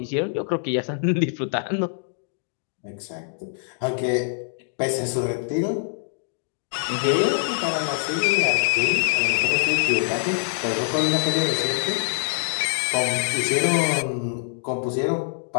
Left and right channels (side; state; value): right; silent; digital silence